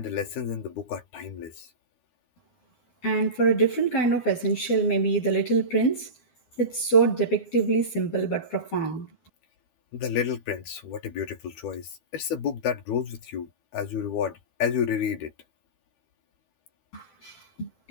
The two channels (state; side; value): late; right; 12 ms